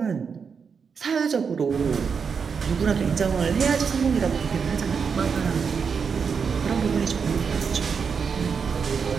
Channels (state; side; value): quieter; left; 6.0 dB